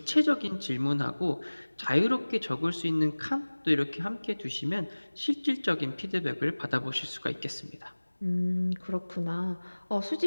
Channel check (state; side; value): inverted; both; correlation -1.00